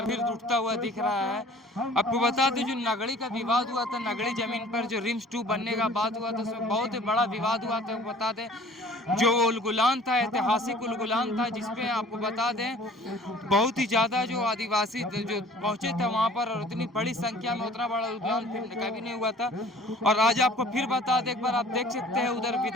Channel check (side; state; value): both; normal; correlation 0.49